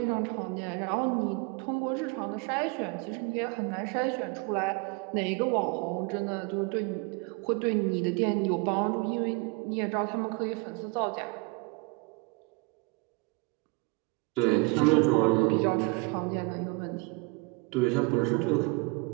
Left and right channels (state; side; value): quieter; left; 28.2 dB